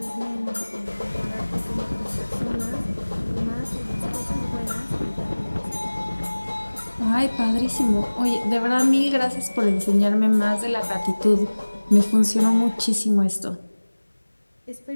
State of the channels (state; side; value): inverted; both; correlation -1.00